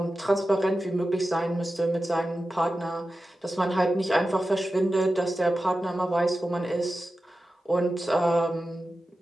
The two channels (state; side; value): normal; both; correlation 0.93